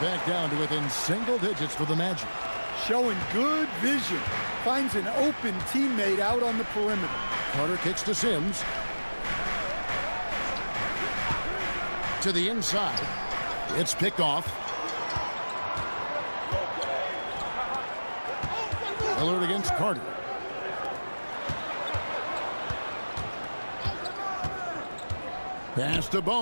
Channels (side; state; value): both; inverted; correlation -1.00